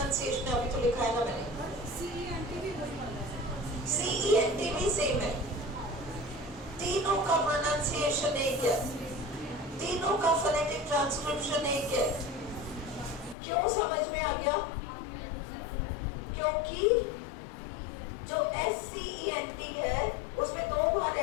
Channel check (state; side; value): drops out; right; at 13.4 s